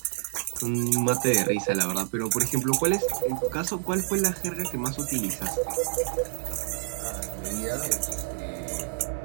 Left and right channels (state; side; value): silent; left; 55 dB below the other